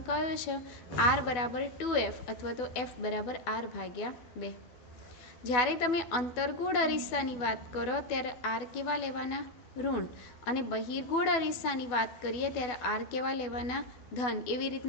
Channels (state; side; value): late; right; 12 ms